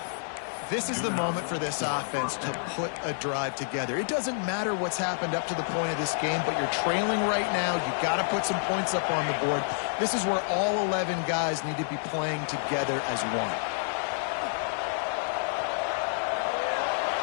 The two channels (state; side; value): silent; right; digital silence